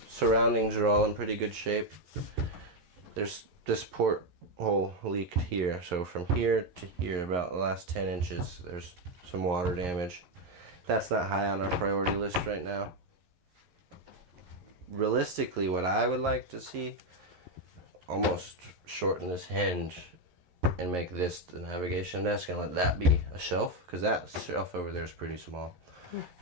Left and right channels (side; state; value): left; late; 11 ms